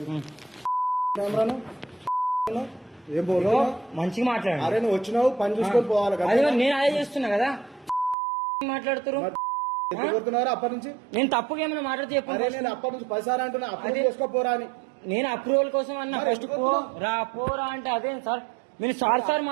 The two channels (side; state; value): left; drops out; at 8.2 s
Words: ఏం పోను మంచిగా మాట్లాడండి. అరే నువ్వు వచ్చినావు పని చూసుకొని పోవాలి కదా. నేను అదే చేస్తున్నా కదా మాట్లాడుతున్నారు అప్పటి నుంచి నేను తప్పుగా ఏమైనా మాట్లాడితే చెప్పండి. నేను అప్పటి నుంచి 10 సార్లు అంటున్నా అప్రూవ్ చేసుకోపోరా అని. నేను అప్రూవల్ కోసం అన్నా ఫస్ట్ పోరా అంటే అదేం సార్ మీరు సార్